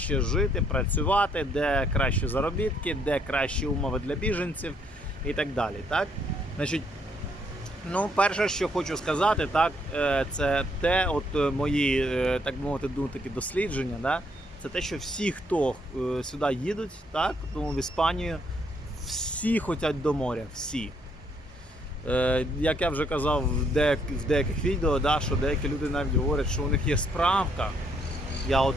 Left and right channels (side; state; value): both; normal; correlation 0.70